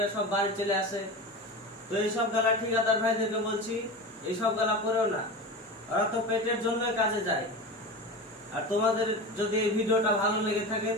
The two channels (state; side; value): normal; both; correlation 0.27